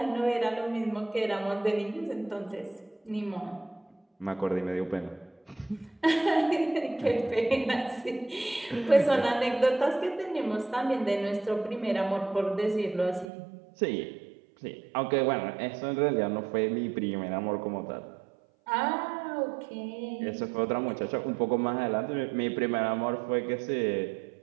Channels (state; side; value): drops out; left; at 13.2 s